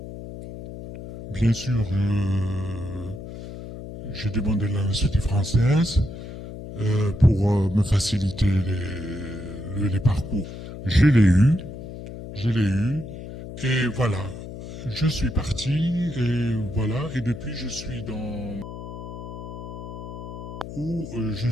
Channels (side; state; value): left; noise; hum, 11 dB below the sound